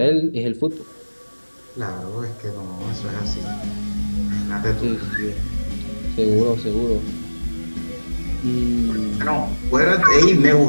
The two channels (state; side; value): inverted; both; correlation -1.00